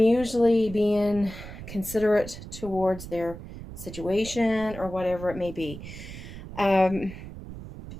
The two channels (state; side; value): noise; right; rumble, 12 dB below the sound